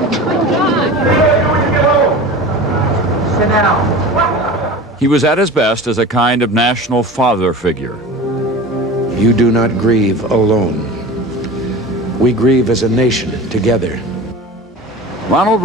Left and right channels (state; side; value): normal; both; correlation 0.34